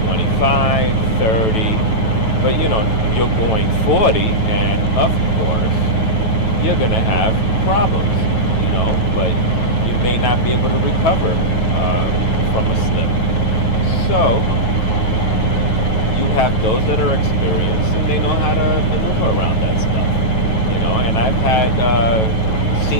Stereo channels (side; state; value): right; late; 9.2 ms